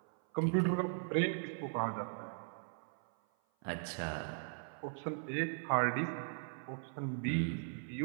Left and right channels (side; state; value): left; silent; 52 dB below the other